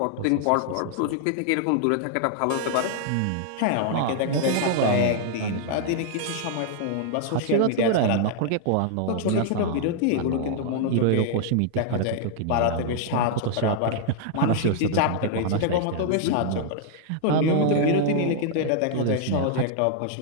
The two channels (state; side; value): different; both; correlation 0.00